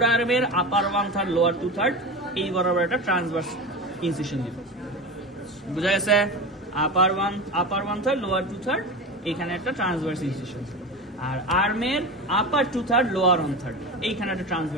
আর্মের upper one third lower two third এই বরাবর একটা ট্রান্সভার্স ইনসিশন দিব বুঝা গেছে upper one third lower two third এখানে একটা ট্রান্সভার্স ইনসিশন আর আর্মের upper two third lower one third এইখানে একটা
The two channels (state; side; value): normal; both; correlation 0.26